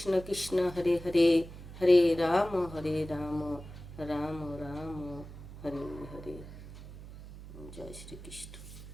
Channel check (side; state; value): right; noise; hum, 14 dB below the sound